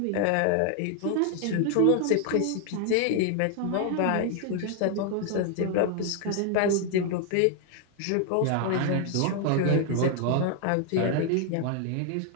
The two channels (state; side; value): different; both; correlation 0.00